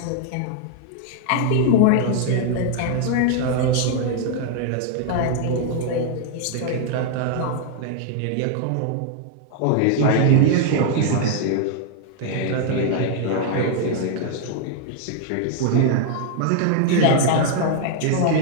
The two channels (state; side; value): different; both; correlation -0.01